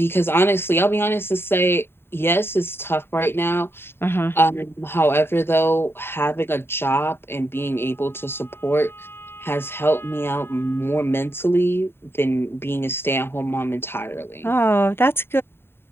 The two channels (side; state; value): right; late; 0.11 ms